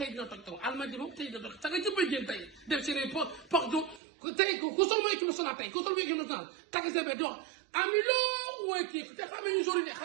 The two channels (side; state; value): left; drops out; at 4.0 s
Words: dina toj taw almadi moom tey dina toj caga jëppay génn tey def seen porte tey ku sol mooy équipe nationale tey ku sol mooy équipe nationale tagg sa be dox ami loo wooy kii te xamee ñu jori de